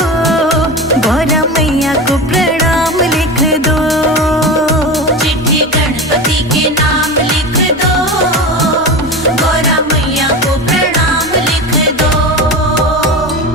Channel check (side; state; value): both; normal; correlation 0.26